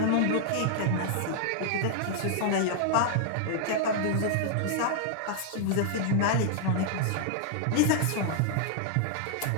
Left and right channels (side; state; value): both; different; correlation -0.01